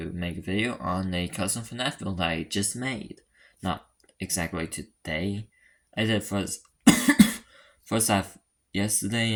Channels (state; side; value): identical; both; correlation 1.00